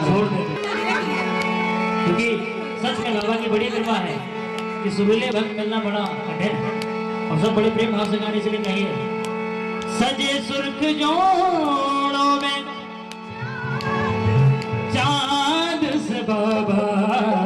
छोड़ देते, क्योंकि सच में बाबा की बड़ी कृपा है कि सुरीले भक्त मिलना बड़ा कठिन है, और सब बड़े प्रेम भाव से गाने इसलिए कहिए। सजे सुर्ख जोड़ों में चांद से बाबा,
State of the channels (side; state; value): both; identical; correlation 1.00